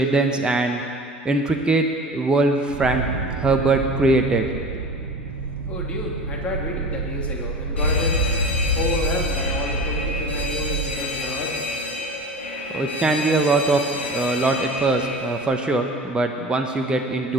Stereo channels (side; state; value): both; normal; correlation 0.36